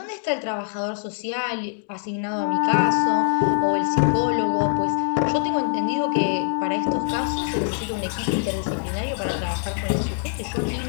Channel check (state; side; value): silent; right; digital silence